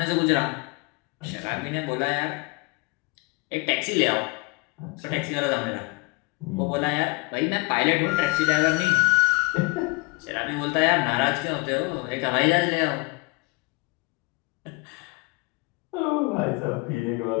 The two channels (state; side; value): quieter; right; 26.9 dB